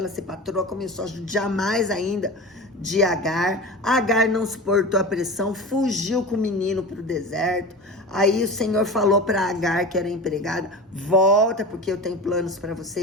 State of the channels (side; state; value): both; normal; correlation 0.31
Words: ser patroa, começou a judiar mais ainda de Agar. Agar não suportou a pressão, fugiu com o menino para o deserto. Aí o Senhor falou para Agar, que era empregada: volta, porque eu tenho planos para você